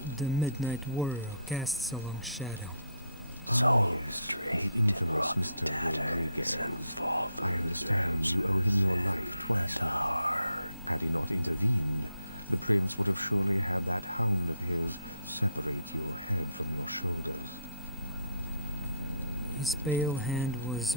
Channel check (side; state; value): both; inverted; correlation -0.70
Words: So yes, straight the infamous Mr. Rodriguez. I understand you owe him your life twice now. Had he not intervened, the prince would have surely had that hound of his separate your head from your shoulders.